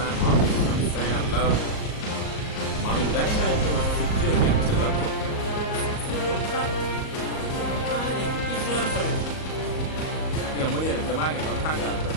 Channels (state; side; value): late; right; 38 ms